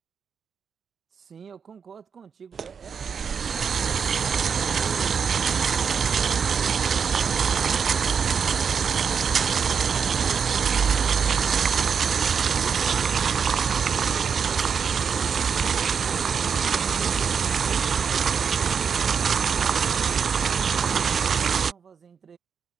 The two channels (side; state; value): left; quieter; 6.5 dB